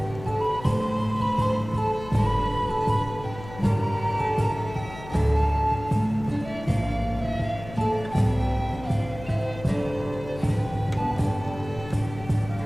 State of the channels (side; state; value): left; noise; hum, 15 dB below the sound